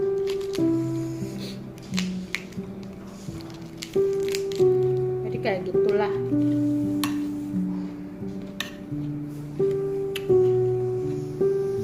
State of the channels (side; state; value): both; identical; correlation 1.00